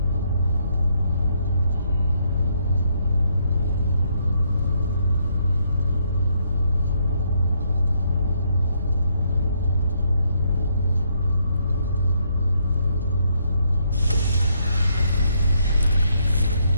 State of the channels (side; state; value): both; inverted; correlation -0.74